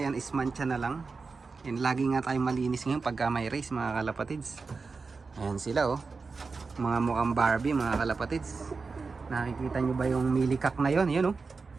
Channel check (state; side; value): quieter; left; 4.4 dB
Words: yan is mancha na lang. Yan, lagi nga tayo malinis ngayon pagka may race mga kalapatids. Ayan sila oh. Mga mukhang Barbie mga kalapatids. Nakikita nyo ba yung milikak na yon? Yan oh.